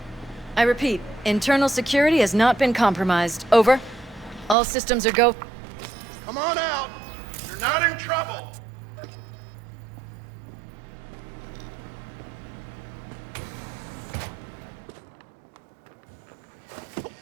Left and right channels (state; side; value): drops out; left; at 4.5 s